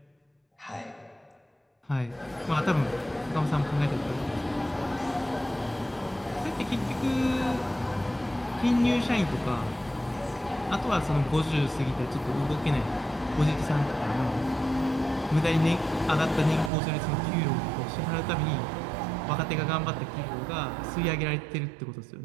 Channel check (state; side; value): drops out; left; at 16.7 s